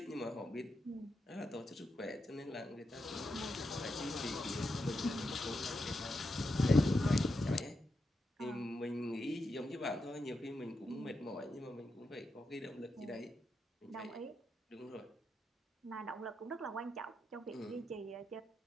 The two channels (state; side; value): normal; both; correlation 0.86